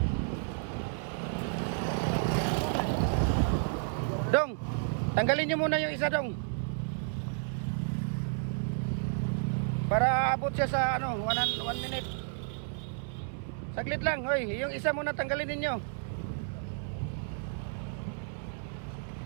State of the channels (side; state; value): left; silent; digital silence